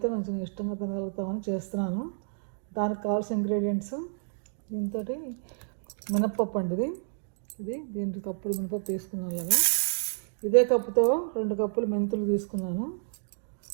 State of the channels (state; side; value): silent; left; digital silence